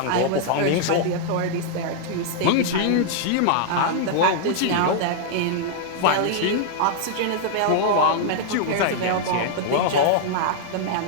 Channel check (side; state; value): both; different; correlation -0.01